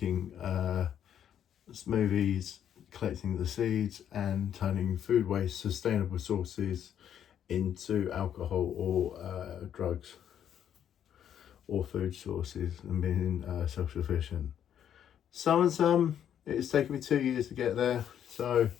smoothies, collecting the seeds and turning food waste, sustainable sources, into alcohol or drugs or food sources, and being self-sufficient. Some and some, it's taken me 2 years to get there, so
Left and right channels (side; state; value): right; quieter; 9.6 dB